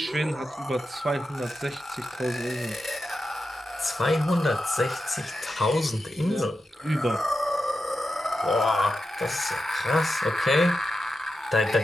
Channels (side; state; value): both; normal; correlation 0.89